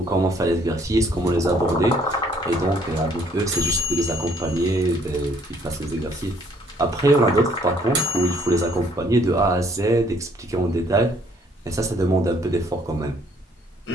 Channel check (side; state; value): both; normal; correlation 0.63